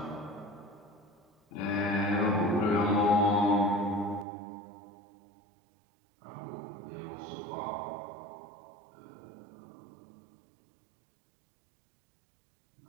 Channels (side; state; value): left; drops out; at 4.2 s